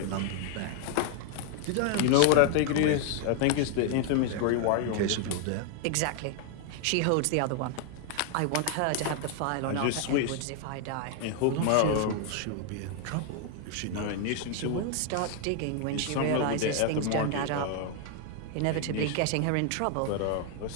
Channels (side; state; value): both; different; correlation 0.00